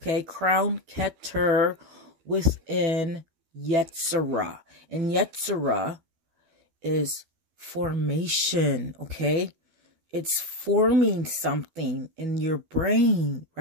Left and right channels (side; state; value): left; late; 12 ms